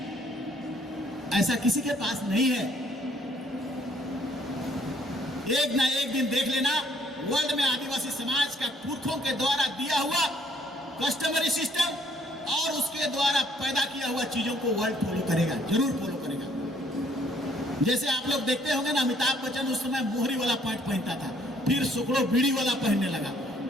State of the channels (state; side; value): normal; both; correlation 0.63